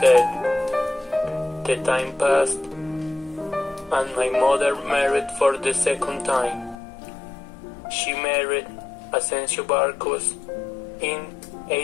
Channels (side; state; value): right; drops out; at 6.8 s